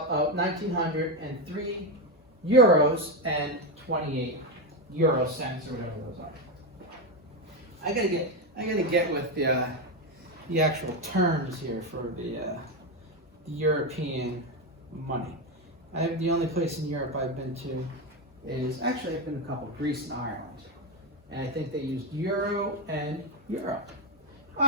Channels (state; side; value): normal; both; correlation 0.11